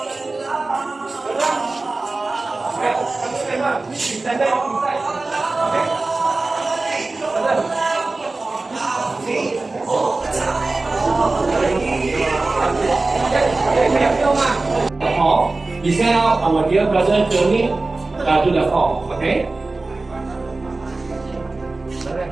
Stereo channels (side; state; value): left; quieter; 3.3 dB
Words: Hall. We send out our dear brother journey to the hall. Okay.